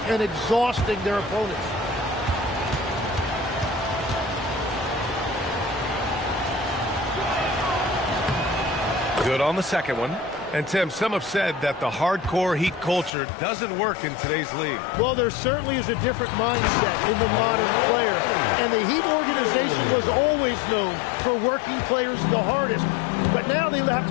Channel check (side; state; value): right; drops out; at 13.1 s